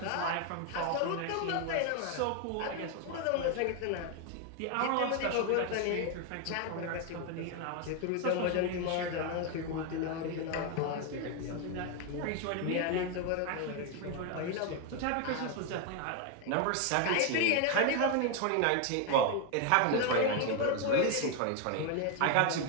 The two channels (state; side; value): different; both; correlation 0.01